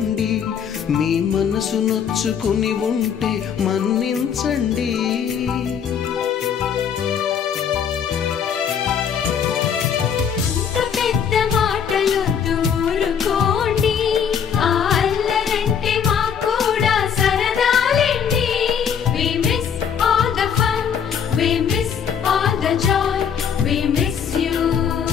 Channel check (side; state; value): right; quieter; 7.6 dB